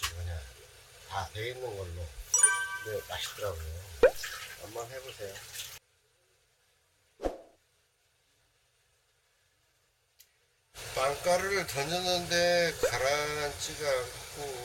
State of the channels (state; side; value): identical; both; correlation 1.00